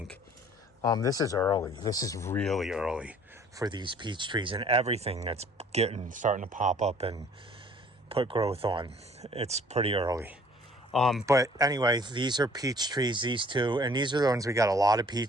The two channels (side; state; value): both; normal; correlation 0.55